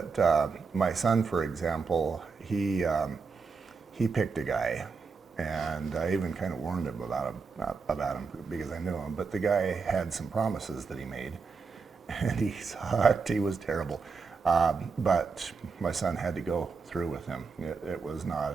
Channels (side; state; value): left; quieter; 5.0 dB